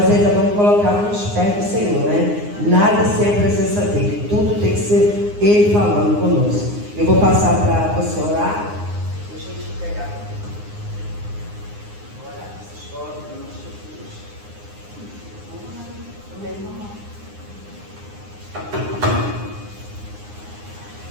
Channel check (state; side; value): late; left; 9.7 ms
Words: ainda vamos colocar nos pés do Senhor, né? Nada sem a presença dele, tudo tem que ser Ele falando conosco. Eu vou passar para você orar. Deixa eu te pegar. Orar essas fotos, em nome de Jesus. Amém.